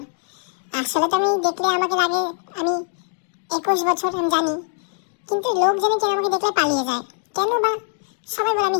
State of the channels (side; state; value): right; silent; 56 dB below the other